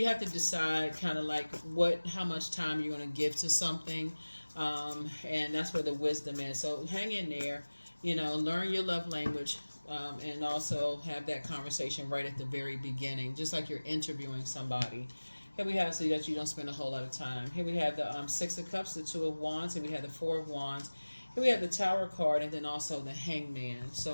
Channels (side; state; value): both; inverted; correlation -1.00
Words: have to decide kind of like how much time you're going to give to something. And that's where the wisdom is. So hang in there, learn your love language, and also have that conversation right at the very beginning, just like you're interviewing somebody. Here we have, so that you don't spend a whole lot of time. Here we have the Six of Cups, the Two of Wands, and we have the Four of Wands. Here we have the Tower card, and then also the Hangman.